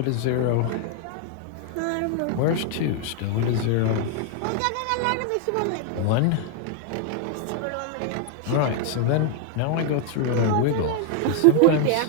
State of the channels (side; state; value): both; different; correlation 0.00